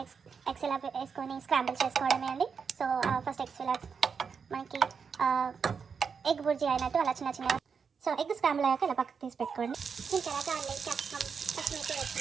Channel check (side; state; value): left; quieter; 6.0 dB